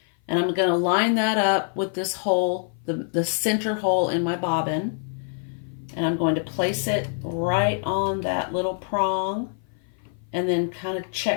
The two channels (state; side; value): silent; right; 56 dB below the other